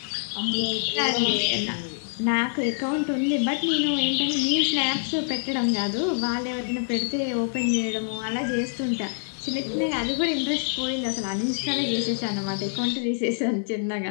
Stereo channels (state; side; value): silent; right; 61 dB below the other